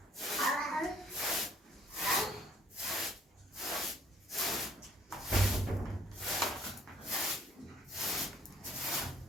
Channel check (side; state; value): both; normal; correlation 0.60